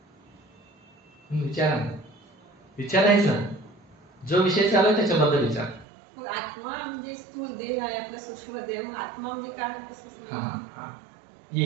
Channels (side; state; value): left; drops out; at 5.9 s